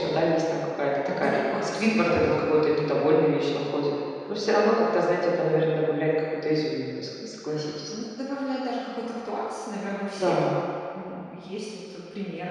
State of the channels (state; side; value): identical; both; correlation 1.00